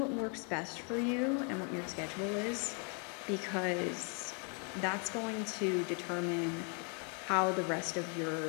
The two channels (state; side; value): quieter; right; 38.2 dB